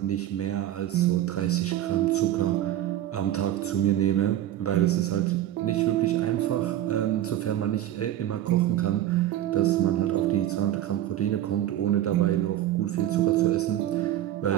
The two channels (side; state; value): left; quieter; 12.7 dB